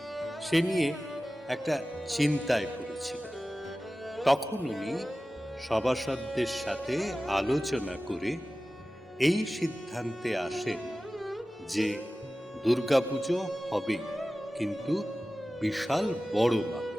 সে নিয়ে একটা চিন্তায় পড়েছিল। তখন উনি সভাসদদের সাথে আলোচনা করে এই সিদ্ধান্তে আসেন যে দুর্গাপুজো হবে, কিন্তু বিশাল বড় মাপের।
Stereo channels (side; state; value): both; normal; correlation 0.96